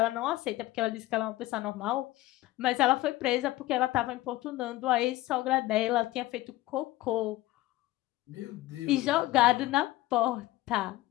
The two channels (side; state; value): right; quieter; 17.3 dB